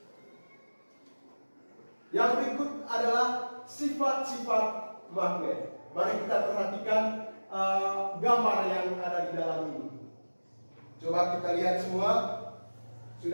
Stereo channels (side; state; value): both; inverted; correlation -1.00